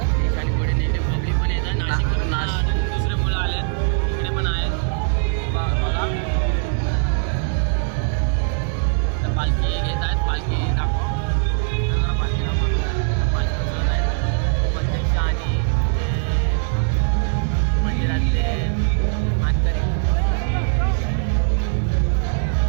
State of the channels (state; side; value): silent; left; digital silence